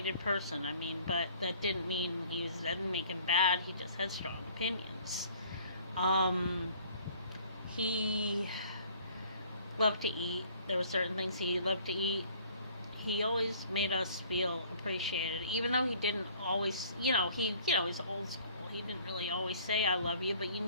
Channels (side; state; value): both; inverted; correlation -0.54